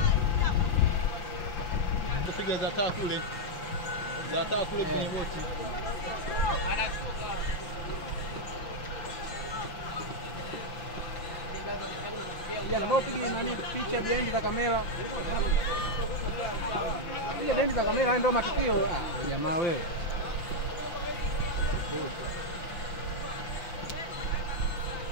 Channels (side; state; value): right; late; 5.8 ms